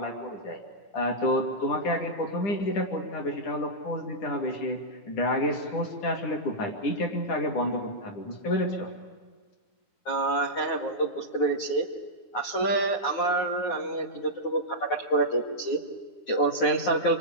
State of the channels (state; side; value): late; right; 9.6 ms